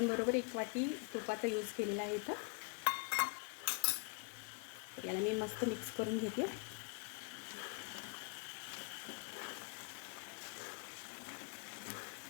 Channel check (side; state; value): right; quieter; 33.6 dB